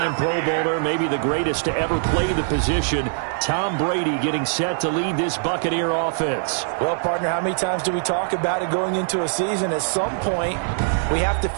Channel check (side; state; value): left; silent; digital silence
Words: Pro Bowler, maybe the greatest to ever play the position, Tom Brady, getting set to lead this Buccaneer offense. Well, partner, how many times do we talk about it going into a season? At some point, we have to